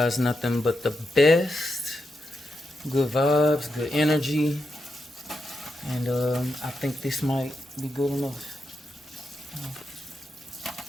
nothing but the best. Good vibes, good energy. And I think this might be good enough.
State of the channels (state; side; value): normal; both; correlation 0.86